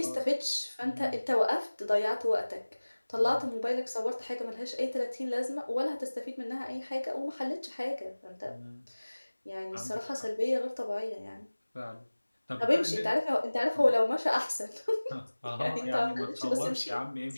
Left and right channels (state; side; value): inverted; both; correlation -1.00